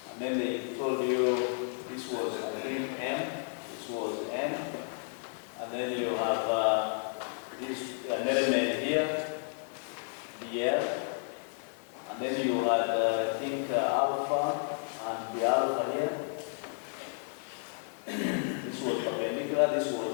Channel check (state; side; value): silent; right; 56 dB below the other